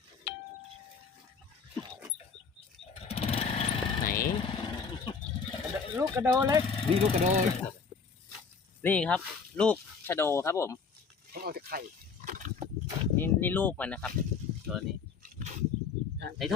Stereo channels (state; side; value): quieter; right; 5.5 dB